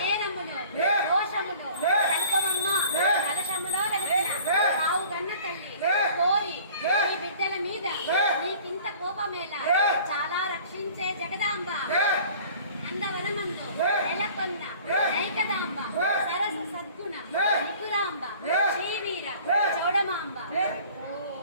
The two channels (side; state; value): both; inverted; correlation -0.48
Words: దోషములు సంకమమ్మ కలశములో వెలసిన ఆవు గన్న తల్లి కోరి నీ బిడ్డల మీద నీకింత కోపమేలా చాలా రక్షించే జగదాంబ నందవనమందు నెలకొన్న నైకదాంబ సరస సద్గుణ నిపురాంబ శ్రీవీర చౌడమాంబ